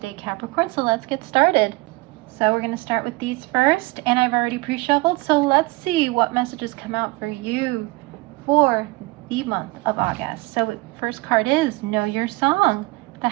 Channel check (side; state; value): left; quieter; 23.6 dB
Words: Capricorn, so let's get started. So we're going to start with these first, and I've already pre-shuffled, so let's see what messages come out for you for the month of August. So first card is Know Your Song, the